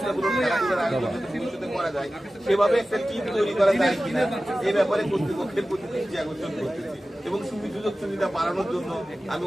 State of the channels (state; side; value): normal; both; correlation 0.96